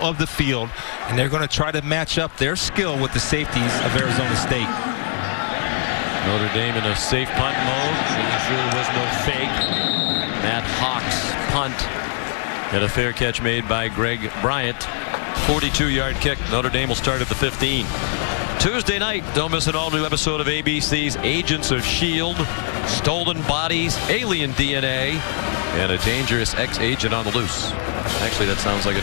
of the field, and they're going to try to match up their skill with the safeties of Arizona State. Notre Dame in a safe punt mode, making sure there was no fake. Matt Hawks punt. And a fair catch made by Greg Bryant. 42-yard kick. Notre Dame will start at the 15. Tuesday night, don't miss an all-new episode of ABC's Agents of S.H.I.E.L.D. Stolen bodies, alien DNA, and a dangerous ex-agent on the loose. Actually, that sounds like a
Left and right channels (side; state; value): right; silent; digital silence